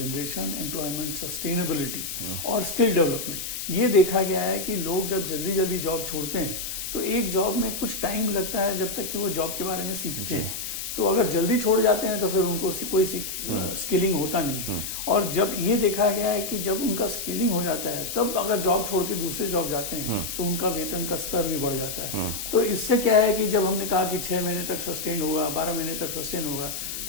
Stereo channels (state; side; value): noise; left; hiss, 5 dB below the sound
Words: employment sustainability और स्किल डेवलपमेंट। ये देखा गया है कि लोग जब जल्दी जल्दी जॉब छोड़ते हैं तो एक जॉब में कुछ टाइम लगता है जब तक कि वो जॉब के बारे में सीखते हैं। तो अगर जल्दी छोड़ जाते हैं तो फिर उनको कोई स्किलिंग होता नहीं है। और जब ये देखा गया है कि जब उनका स्किलिंग हो जाता है तब अगर जॉब छोड़ के दूसरे जॉब जाते हैं तो उनका वेतन का स्तर भी बढ़ जाता है। तो इससे क्या है कि जब हमने कहा कि 6 महीने तक सस्टेन होगा, 12 महीने तक सस्टेन होगा,